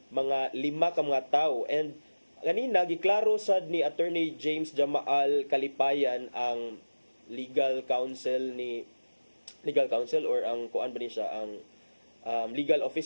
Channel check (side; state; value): both; inverted; correlation -1.00